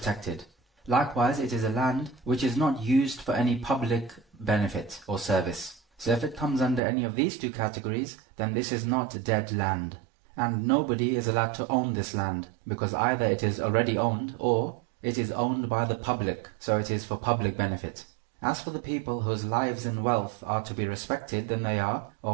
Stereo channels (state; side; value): drops out; left; at 6.8 s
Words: Likewise, it is a land which is not used for any public benefit or service. So if it comes under any of these two categories, then this is not dead land. And nobody is allowed to own this land, because either it is already owned or it is owned by the public, so it is for public benefit. As for the people whose lives and wealth are to be respected, then they are